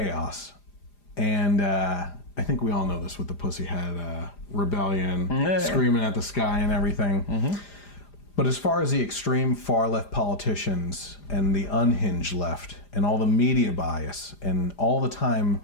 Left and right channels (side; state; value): right; late; 4.9 ms